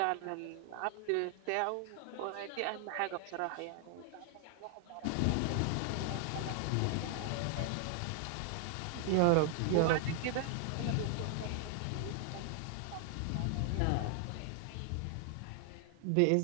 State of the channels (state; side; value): different; both; correlation 0.00